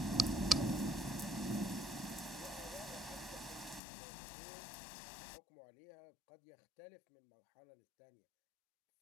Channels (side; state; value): right; drops out; at 3.8 s